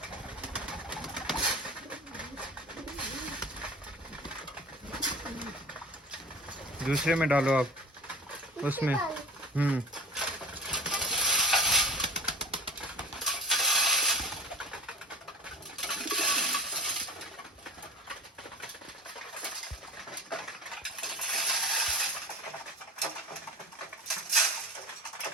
दूसरे में डालो आप, उसमें। इससे डालें।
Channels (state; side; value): normal; both; correlation 0.37